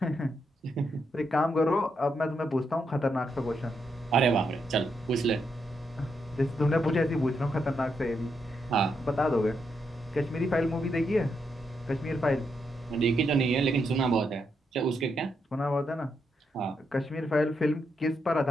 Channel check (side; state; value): both; normal; correlation 0.81